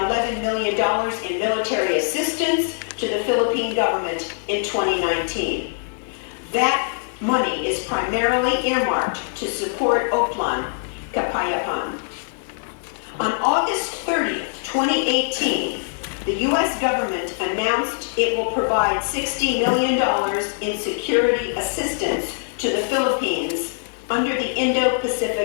million in military assistance to the Philippine government in 2019. That money is primarily earmarked to support Oplan Kapayapan. On August 30th, 2018, the U.S. government announced it will provide $60 million in security assistance to the Philippines under the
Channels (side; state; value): right; silent; digital silence